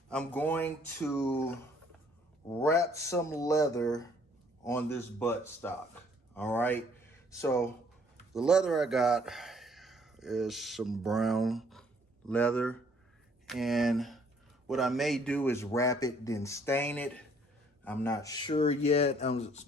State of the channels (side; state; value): both; normal; correlation 0.62